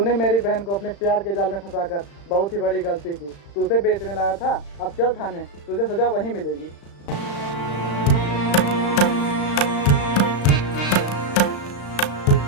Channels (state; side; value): late; right; 35 ms